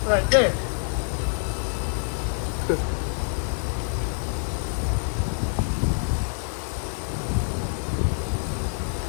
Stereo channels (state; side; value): silent; right; digital silence